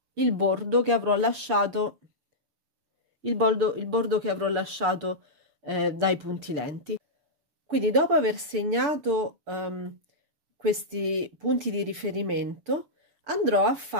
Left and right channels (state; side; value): late; left; 6.8 ms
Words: il bordo che avrò lasciato, il bordo che avrò lasciato dai punti lenti. Quindi dopo aver segnato questi punti di riferimento, andrò a